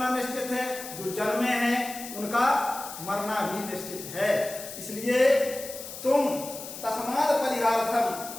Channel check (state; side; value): noise; left; hiss, 11 dB below the sound